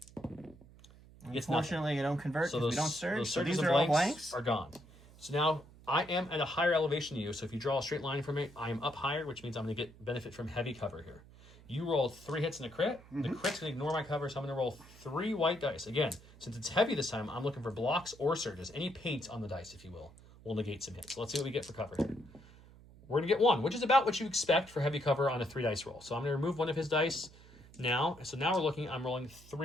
Unfortunately, you don't convert because we don't surge. Those So surges these and are all blanks. are gone. So now I am at a higher elevation than you, so if you draw a straight line from me, I am up higher, which means I'm going to get benefit from heavy cover here. You rolled 3 hits and a crit. The crit's going to ignore my cover, so I'm going to roll 3 white dice. Again, since it's heavy this time, I'm looking for blocks or surges. Any paint on the dice, if you will negate some hits. So let's see what we get for cover here. We're going to get 1, which is about what you expect for heavy cover on a 3 dice roll. So I'm going to remove 1 of his dice now. So now I'm rolling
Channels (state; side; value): noise; right; hum, 22 dB below the sound